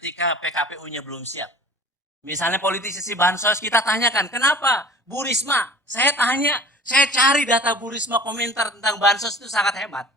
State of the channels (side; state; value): both; normal; correlation 0.44